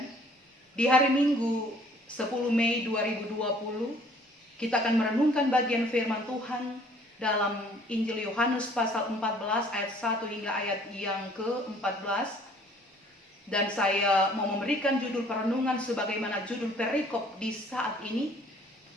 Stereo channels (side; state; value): both; normal; correlation 0.57